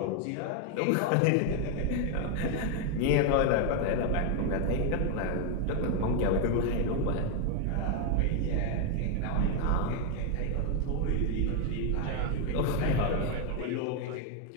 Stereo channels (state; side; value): different; both; correlation 0.01